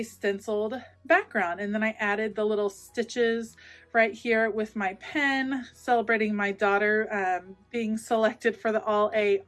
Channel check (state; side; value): identical; both; correlation 1.00